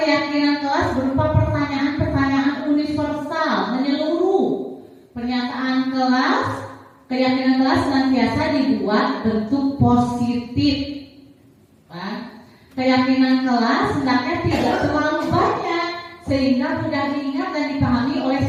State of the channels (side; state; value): both; identical; correlation 1.00